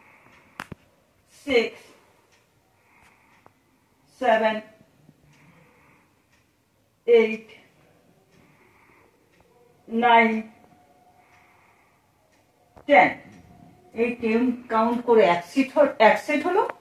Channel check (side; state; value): both; identical; correlation 1.00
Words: 6 7 8 9 10। এই 10 কাউন্ট করে এক সেট হলো,